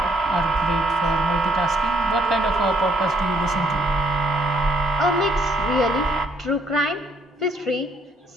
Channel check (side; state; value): both; normal; correlation 0.67